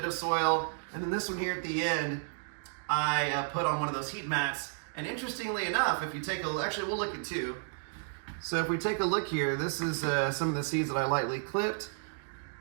of soil. And then this one here at the end, I put on one of those heat mats. And interestingly enough, if you take a look, actually we'll look at two. So if we take a look here, this is some of the seeds that I lightly clipped.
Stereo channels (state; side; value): silent; left; digital silence